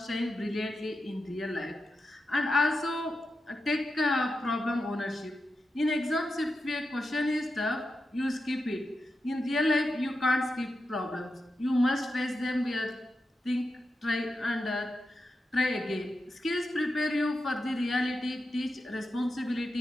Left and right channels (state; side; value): normal; both; correlation 0.89